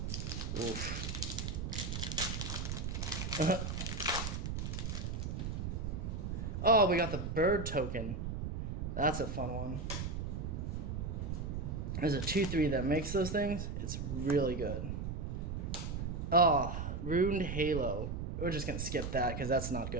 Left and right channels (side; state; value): right; noise; rumble, 3 dB below the sound